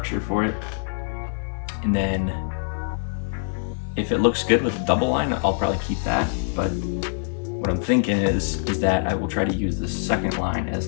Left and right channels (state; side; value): silent; right; 62 dB below the other